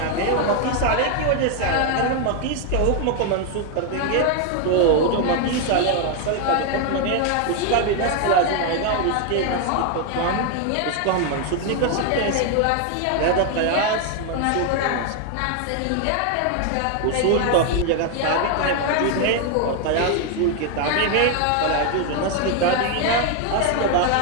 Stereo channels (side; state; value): both; different; correlation 0.01